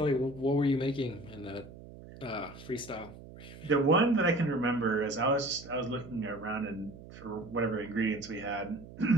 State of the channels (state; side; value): noise; right; hum, 16 dB below the sound